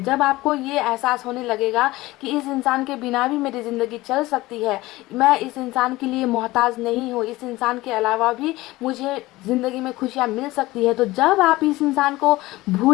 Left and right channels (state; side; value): quieter; right; 18.9 dB